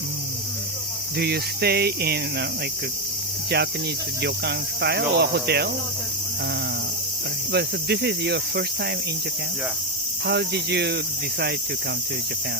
Do you stay in like a Japanese ryokan style or hotel? But so this is your first time in Japan? Yeah. How did you decide to come to Japan?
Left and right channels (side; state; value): both; normal; correlation 0.09